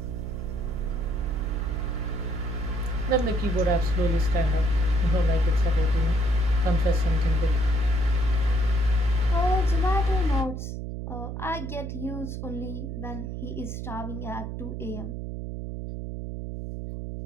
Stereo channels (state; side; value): noise; right; hum, 6 dB below the sound